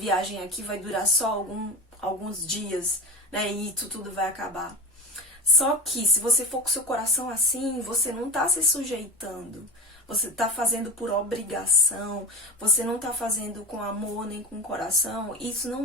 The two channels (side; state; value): both; normal; correlation 0.27